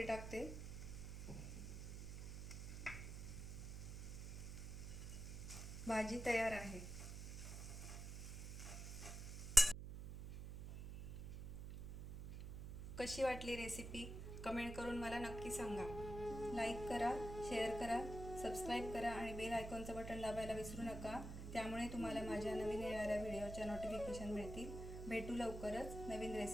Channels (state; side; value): noise; right; hum, 7 dB below the sound